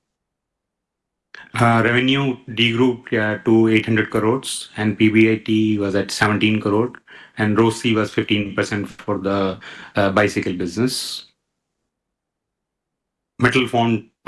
Revenue degrew to 800 crores and PBIT was at 17 crore and ROCE was 15% for the bicycle business. Metal formed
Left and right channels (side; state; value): both; identical; correlation 1.00